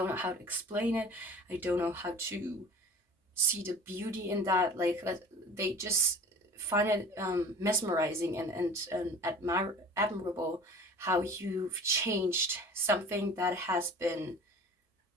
know how to explain it. I don't know how to see the beauty in that. Like, they just find it mesmerizing and admirable how you've changed something that has been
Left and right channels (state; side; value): normal; both; correlation 0.42